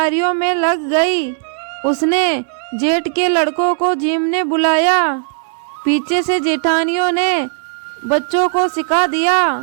में लग गई। उसने जेठ के लड़कों को जिमने बुलाया। पीछे से जेठानियों ने बच्चों को सिखा दिया,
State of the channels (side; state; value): left; silent; 60 dB below the other